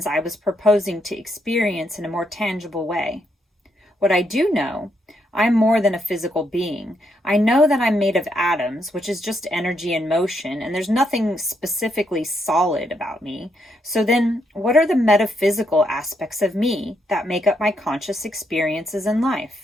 I was proposing to experience in a more tangible way. What I do know, I'm more than a physical being. I know that I'm made of atoms, which is just energy in motion, and there's nothing specifically solid about me. So then, what are the metaphysical aspects of me that make up my conscious experiences in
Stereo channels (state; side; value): normal; both; correlation 0.77